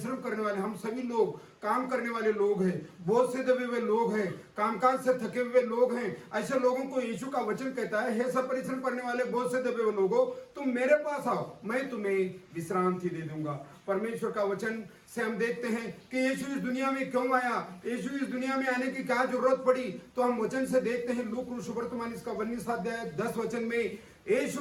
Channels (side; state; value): both; identical; correlation 1.00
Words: करने वाले, हम सभी लोग काम करने वाले लोग हैं, बोझ से दबे हुए लोग हैं, कामकाज से थके हुए लोग हैं, ऐसे लोगों को यीशु का वचन कहता है, हे सब परिश्रम करने वाले बोझ से दबे हुए लोगों, तुम मेरे पास आओ, मैं तुम्हें विश्रांति दे दूंगा। परमेश्वर का वचन से हम देखते हैं कि यीशु इस दुनिया में क्यों आया, यीशु इस दुनिया में आने की क्या जरूरत पड़ी। तो हम वचन से देखते हैं लूका सुवर्तमान इसका 19 अध्याय 10 वचन में,